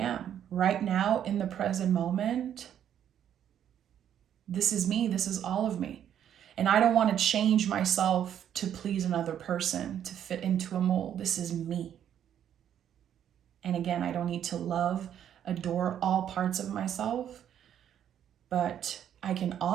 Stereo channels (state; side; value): quieter; left; 9.8 dB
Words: Right now, in the present moment, this is me. This is all of me. And I don't want to change myself to please another person, to fit into a mold. This is me. And again, I don't need to love, adore all parts of myself, but I can